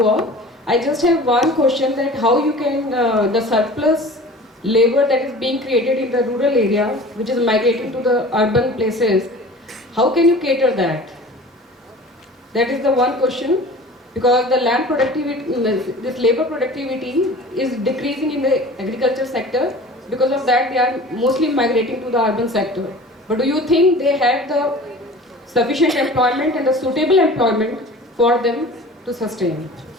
all. I just have one question, that how you can, the surplus labor that is being created in the rural area, which is migrating to the urban places, how can you cater that? That is the one question, because the land productivity, this labor productivity is decreasing in the agriculture sector. Because of that, they are mostly migrating to the urban sector. But do you think they have the sufficient employment and the suitable employment for them to sustain?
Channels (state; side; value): normal; both; correlation 0.41